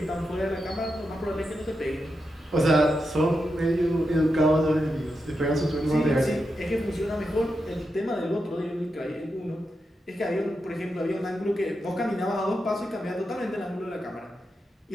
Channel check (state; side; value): normal; both; correlation 0.87